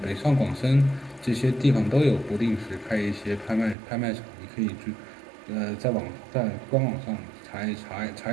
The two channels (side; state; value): left; drops out; at 3.8 s